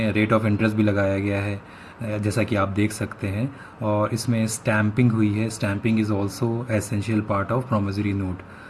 रेट ऑफ इंटरेस्ट भी लगाया गया है, जैसा कि आप देख सकते हैं, और इसमें स्टैम्पिंग हुई है। Stamping is also essential part of promissory note.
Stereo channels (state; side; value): identical; both; correlation 1.00